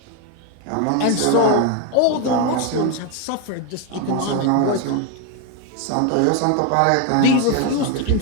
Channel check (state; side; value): different; both; correlation 0.02